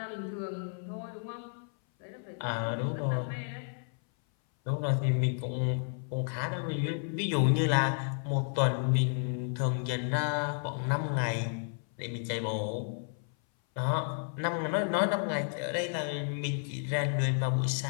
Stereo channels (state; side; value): silent; right; 56 dB below the other